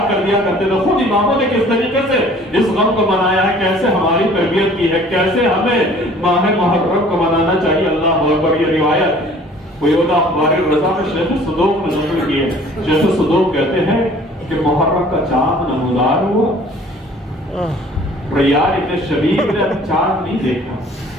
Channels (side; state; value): both; normal; correlation 0.52